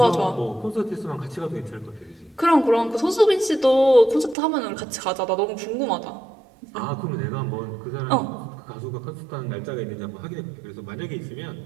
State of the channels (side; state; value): left; drops out; at 4.4 s